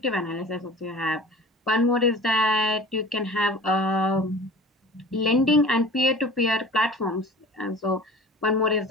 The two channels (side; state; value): both; normal; correlation 0.40